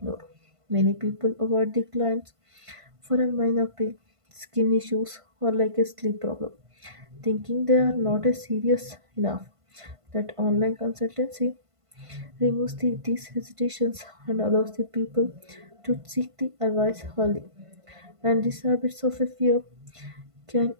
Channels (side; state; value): left; late; 1.5 ms